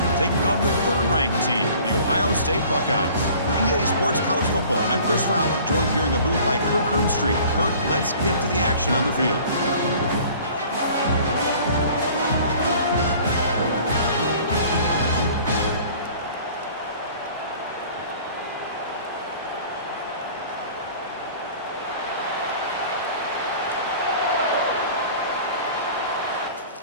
taking on the third-ranked team, the Ohio State Buckeyes. For EA Sports College Football, I'm Chris Fowler, joined here in the booth by Kirk Hermstreet. Kirk, let's get to the action on the field.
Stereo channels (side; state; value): both; inverted; correlation -0.48